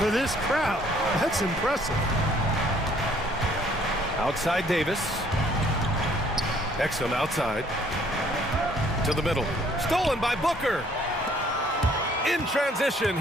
this crowd? That's impressive. Outside Davis. Exum outside. To the middle. Stolen by Booker. In transition,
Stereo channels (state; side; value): normal; both; correlation 0.61